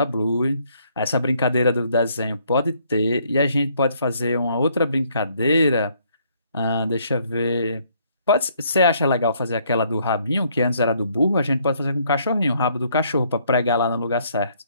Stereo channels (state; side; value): inverted; both; correlation -0.67